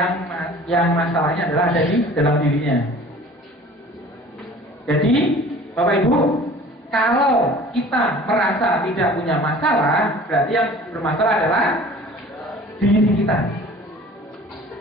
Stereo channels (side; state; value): both; normal; correlation 0.46